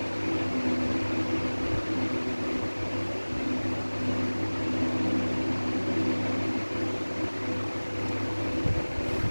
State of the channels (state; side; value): inverted; both; correlation -1.00